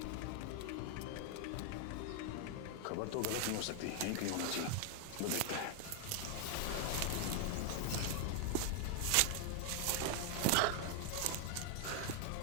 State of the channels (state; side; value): different; both; correlation 0.00